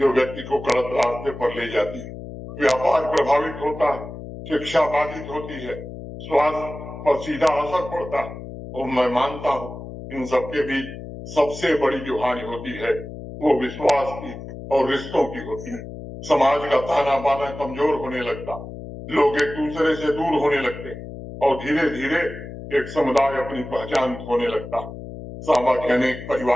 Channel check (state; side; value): noise; left; hum, 11 dB below the sound